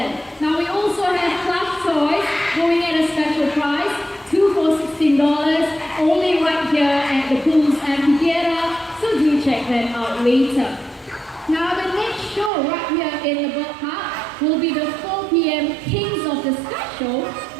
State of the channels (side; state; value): left; drops out; at 12.5 s